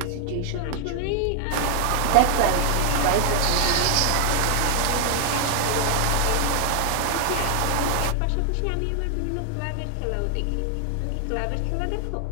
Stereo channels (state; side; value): different; both; correlation 0.00